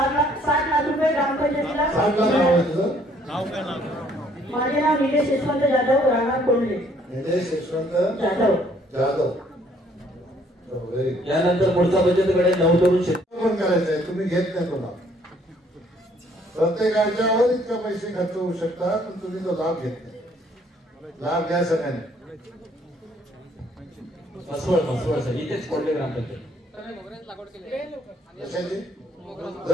लाख रुपये ग्रामपंचायतीला. माझे नाव निलेश यशवंत जाधव, राहणार कोंडले. निलेश यशवंत जाधव. यानंतर पुढचा बचतकडे नवतरुण शेतकरी करायचं आहे. तुम्ही घेत नाही कोणा, प्रत्येकाच्यावर इतका पैसे खर्च होऊ शकतात, पण तुम्ही तो लाभ घेत नाही. लाभ घ्या सगळ्यांनी. मसवड सर इथेच कोंडले ग्रामपंचायत.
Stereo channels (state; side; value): normal; both; correlation 0.63